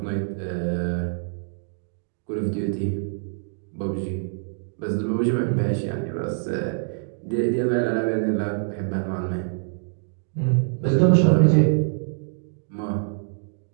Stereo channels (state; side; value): silent; left; digital silence